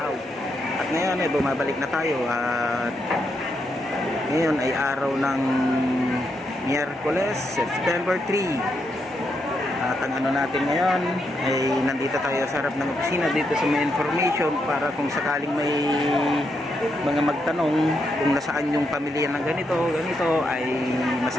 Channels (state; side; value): normal; both; correlation 0.81